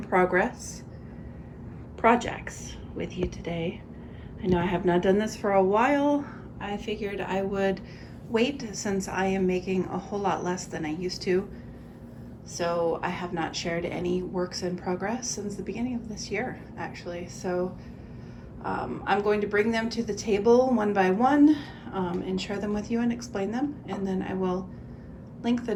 progress projects with you today. I know I have not done this for a while. I figured I would wait since I am making a whole lot less than I used to. So I have not shared any works in progress since the beginning of this year, actually. So I'm going to bring them to the table one by one and share them with you and explain them, and then I will link the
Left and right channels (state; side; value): identical; both; correlation 1.00